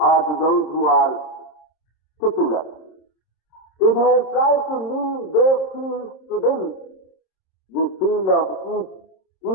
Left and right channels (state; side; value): late; right; 26 ms